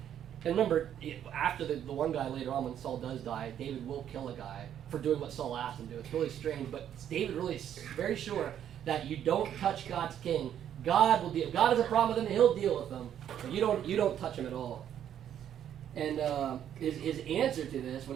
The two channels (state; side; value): quieter; left; 10.0 dB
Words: and remember, after the one guy later on, when Saul does die, David will kill a guy for doing what Saul asked him to do. It's really strange, but David really is very sure that you don't touch God's king. God will deal. If God has a problem with him, he'll deal with them. But you don't touch him at all. And his answer to this,